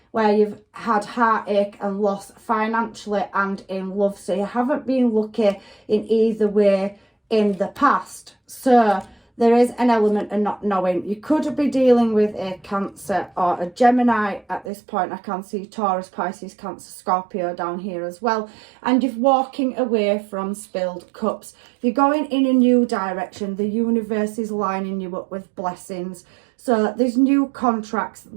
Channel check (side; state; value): left; drops out; at 14.7 s